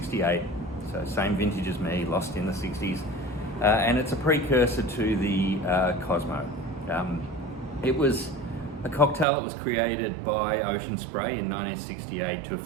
so same vintage as me, lost in the 60s. And it's a precursor to the Cosmo. It was a cocktail that was created by Ocean Spray in 1968 to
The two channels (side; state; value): left; drops out; at 9.2 s